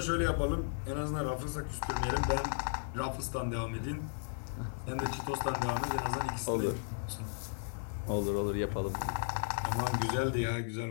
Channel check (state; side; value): silent; right; digital silence